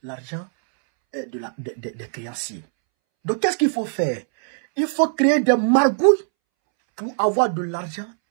L'argent des créanciers. Donc, qu'est-ce qu'il faut faire? Il faut créer des margouilles pour avoir de l'argent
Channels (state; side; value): silent; left; 64 dB below the other